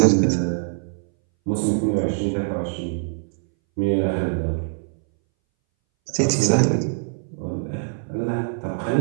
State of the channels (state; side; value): silent; left; 61 dB below the other